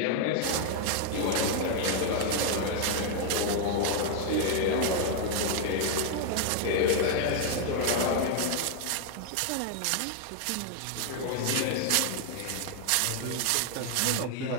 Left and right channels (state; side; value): different; both; correlation 0.00